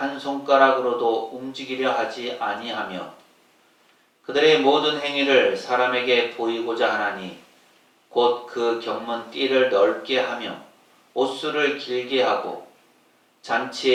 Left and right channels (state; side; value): identical; both; correlation 1.00